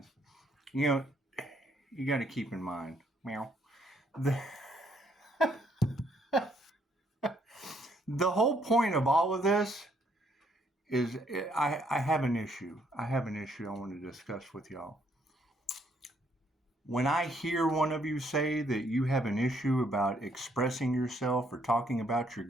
You know, you got to keep in mind, meow, the, the whole point of all of this is I have an issue. I have an issue I want to discuss with y'all. When I hear one of you say that you have an issue about expressing yourself or talking about your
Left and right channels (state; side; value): normal; both; correlation 0.70